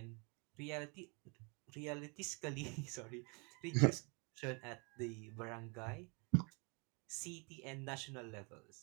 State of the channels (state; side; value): quieter; left; 32.3 dB